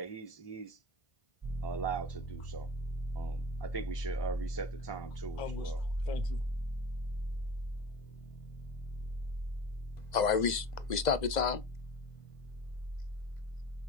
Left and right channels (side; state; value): right; late; 2.0 ms